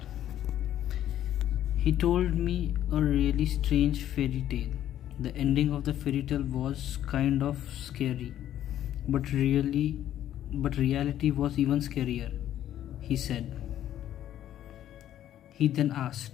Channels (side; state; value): right; quieter; 11.7 dB